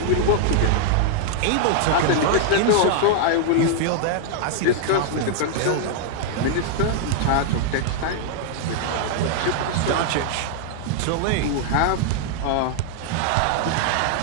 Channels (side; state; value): both; different; correlation 0.00